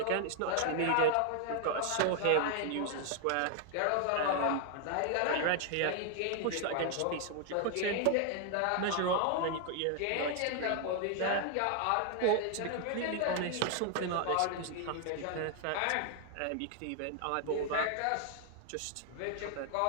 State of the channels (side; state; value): both; different; correlation 0.00